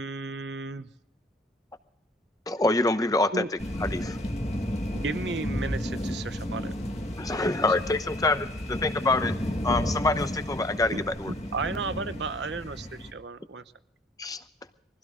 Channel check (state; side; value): normal; both; correlation 0.58